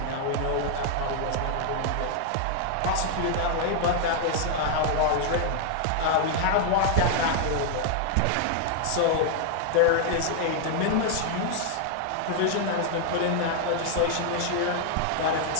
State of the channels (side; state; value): both; different; correlation 0.00